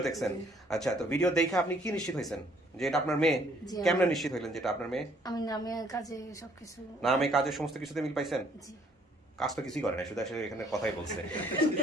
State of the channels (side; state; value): both; normal; correlation 0.63